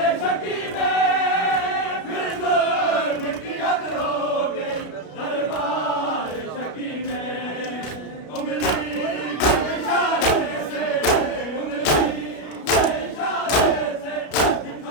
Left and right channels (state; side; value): late; right; 33 ms